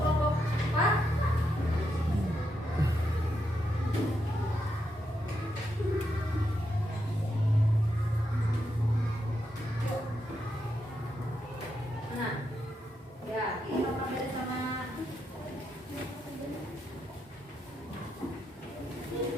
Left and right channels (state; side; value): normal; both; correlation 0.82